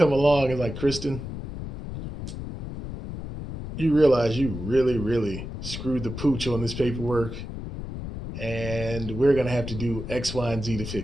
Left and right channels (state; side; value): noise; left; rumble, 8 dB below the sound